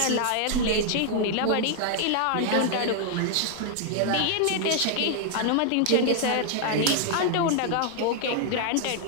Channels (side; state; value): both; different; correlation 0.00